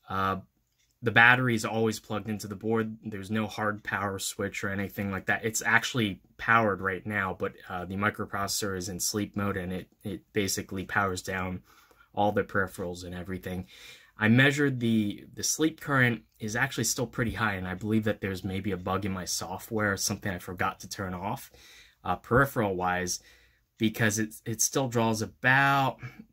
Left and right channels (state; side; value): identical; both; correlation 1.00